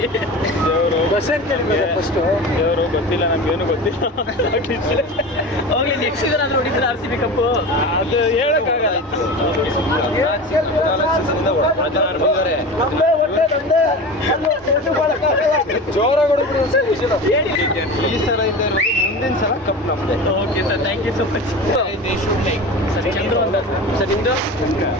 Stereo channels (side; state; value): both; normal; correlation 0.31